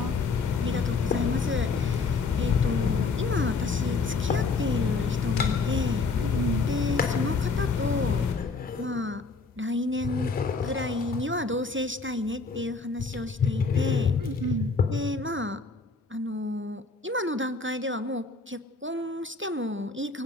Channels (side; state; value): right; quieter; 4.2 dB